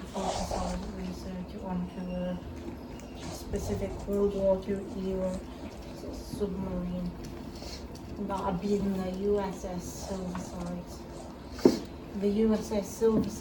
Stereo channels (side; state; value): both; identical; correlation 1.00